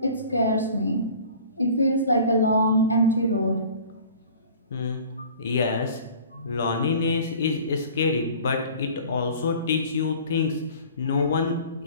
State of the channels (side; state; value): both; inverted; correlation -0.45